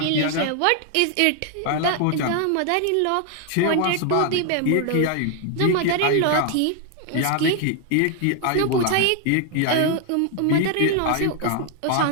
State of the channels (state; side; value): different; both; correlation 0.00